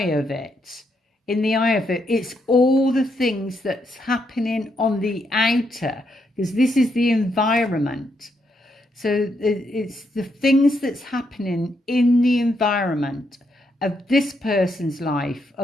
of it. In the eye of it, it's all the things that's happening on the outer, because this is the environment. So it's the things that's happening in the environment of this person's life,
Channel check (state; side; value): normal; both; correlation 0.78